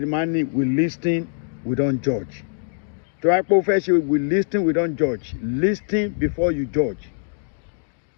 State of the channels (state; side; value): silent; right; 64 dB below the other